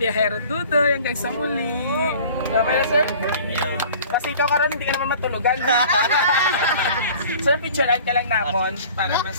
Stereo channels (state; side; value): inverted; both; correlation -0.46